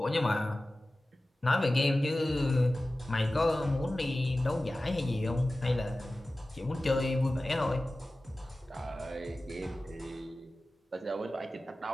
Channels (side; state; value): both; normal; correlation 0.96